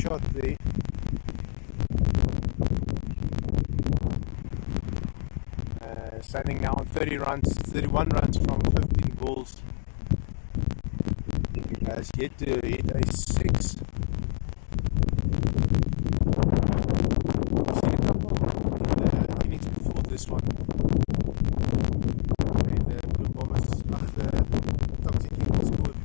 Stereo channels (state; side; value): silent; right; digital silence